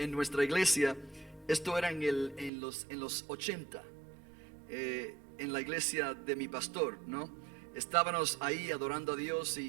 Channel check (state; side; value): drops out; left; at 2.5 s